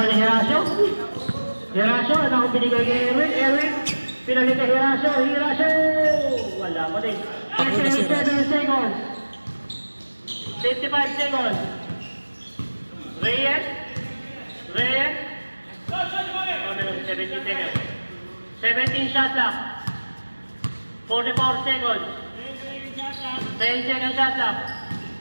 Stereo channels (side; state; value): both; inverted; correlation -1.00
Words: ni Hirasio. Ano akong binigay kay Erwin? Pinalit kay Hirasio. Wala pa din. 57 seconds. 55 seconds. Reyes. 17 seconds. 17 shot clock. 44 seconds. 10 seconds shot clock.